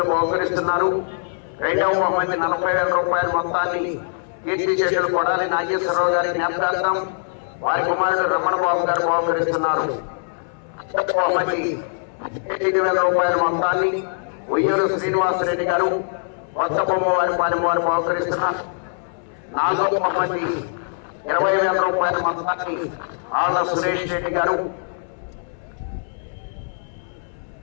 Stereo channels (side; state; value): right; silent; 64 dB below the other